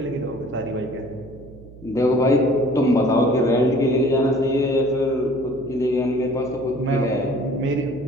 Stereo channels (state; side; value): noise; right; hum, 19 dB below the sound